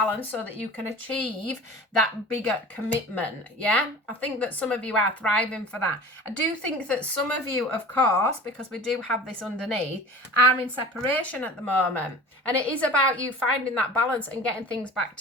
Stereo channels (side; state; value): both; normal; correlation 0.39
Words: so that you can achieve that bigger commitment. Yeah. I think that some of you are thriving for that. I do think that some of you, of course, because we do have this underneath, are in separation at the moment. And it is about you finding that balance and getting things back